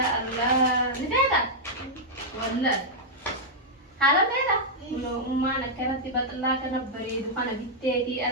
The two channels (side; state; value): both; normal; correlation -0.06